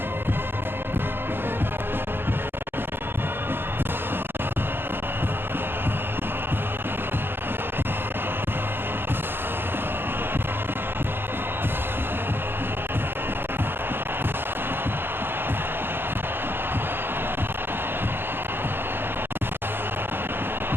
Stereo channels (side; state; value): left; late; 0.10 ms